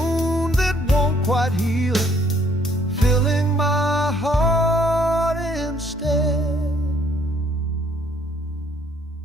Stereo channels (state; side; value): normal; both; correlation 0.65